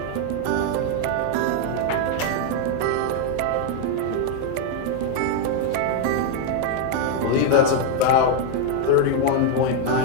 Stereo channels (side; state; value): both; different; correlation 0.00